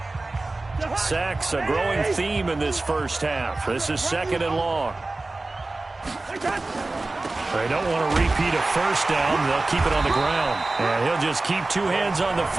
Sacks, a growing theme in this first half. This is second and long. They don't want to repeat a first down. They'll keep it on the ground. And he'll just keep 2 hands on the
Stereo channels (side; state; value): left; quieter; 3.1 dB